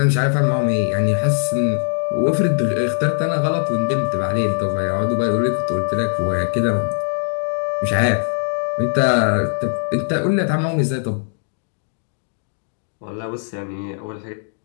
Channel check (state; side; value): silent; right; digital silence